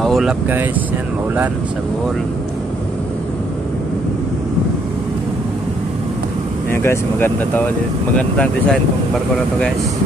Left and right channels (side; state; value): both; normal; correlation 0.69